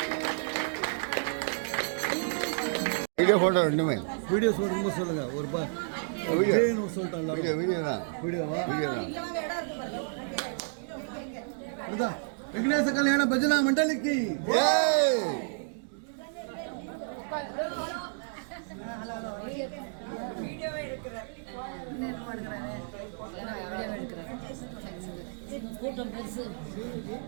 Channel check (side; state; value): left; silent; digital silence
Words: வீடியோ ஃபோட்டோ ரெண்டுமே வீடியோ சொல்லுங்க சொல்லுங்க ஒரு வீடியோ சொல்லிட்டாங்க வீடியோ வீடியோ தான் வீடியோவா வீடியோ தான் இதுதான் விக்னேஷ கல்யாண பஜனா மண்டலிக்கு ஏய் கூட்டம் பெருசு